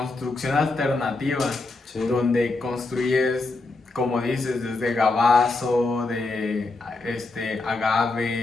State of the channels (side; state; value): right; quieter; 3.4 dB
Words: alternativa, Sí. donde construyes, como dices, desde gabazo, de